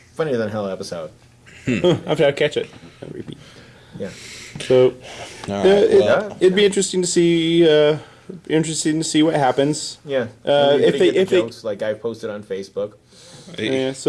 than hell episode. I'll catch it and repeat. Yeah. So it'd be interesting interesting to see what happens. Yeah. If they jokes like I posted on Facebook. Yeah,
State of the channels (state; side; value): identical; both; correlation 1.00